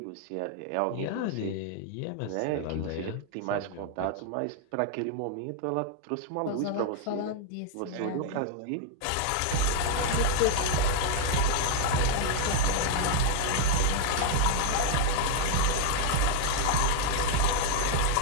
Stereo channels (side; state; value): both; different; correlation -0.01